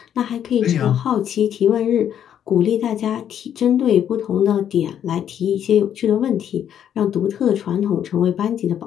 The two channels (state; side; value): quieter; right; 9.6 dB